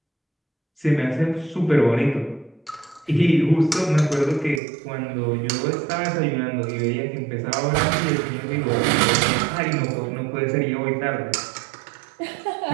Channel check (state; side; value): drops out; left; at 4.6 s